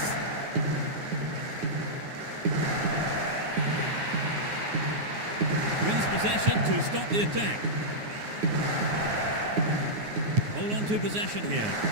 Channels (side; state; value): left; late; 9.5 ms